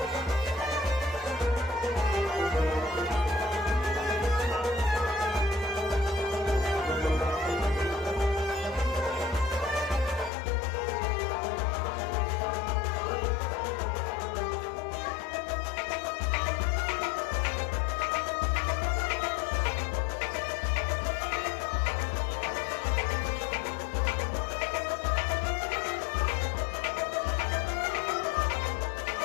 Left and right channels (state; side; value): drops out; right; at 10.3 s